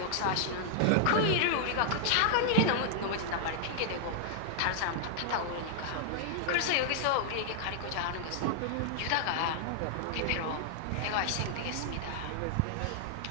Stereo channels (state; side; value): different; both; correlation -0.01